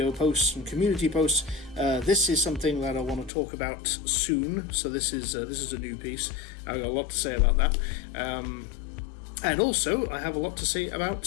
posts and community posts, this is something that I want to talk about soon. So this is a new piece. I've got a lot to say about that. And also, I have a lot to say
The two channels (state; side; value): drops out; right; at 3.3 s